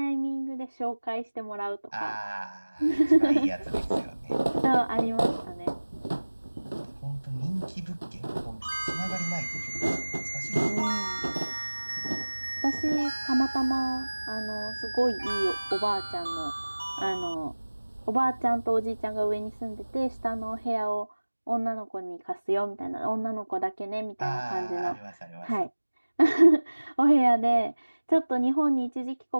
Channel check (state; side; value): inverted; both; correlation -1.00